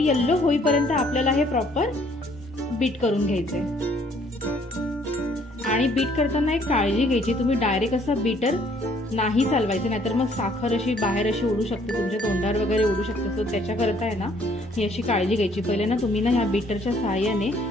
येल्लो होईपर्यंत आपल्याला हे प्रॉपर बीट करून घ्यायचंय। आणि बीट करताना एक काळजी घ्यायची, तुम्ही डायरेक्ट असा बीटर नाही चालवायचं, नाहीतर मग साखर अशी बाहेर अशी उडू शकते, तुमच्या तोंडावर वगैरे उडू शकते। सो त्याच्याकरता आहे ना ही अशी काळजी घ्यायची। पहिले ना तुम्ही ना ह्या बीटरच्या सहाय्याने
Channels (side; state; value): both; normal; correlation 0.62